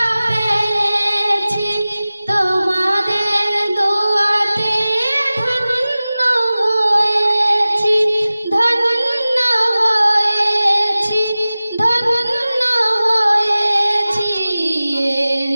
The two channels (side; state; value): both; inverted; correlation -0.97